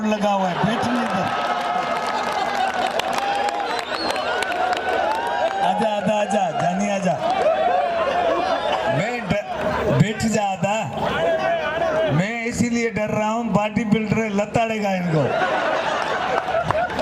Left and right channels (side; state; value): both; identical; correlation 1.00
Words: लगा हुआ है। बैठने दो, आजा आजा आजा, जानी आजा, बैठ जा आदा। मैं इसीलिए डर रहा हूँ, बॉडी बिल्डर लताड़ेगा इनको।